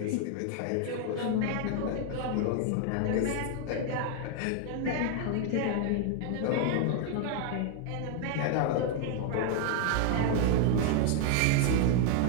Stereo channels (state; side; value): different; both; correlation 0.00